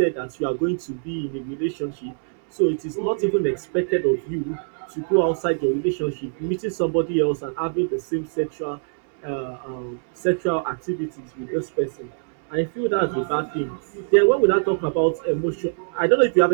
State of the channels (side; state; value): left; silent; digital silence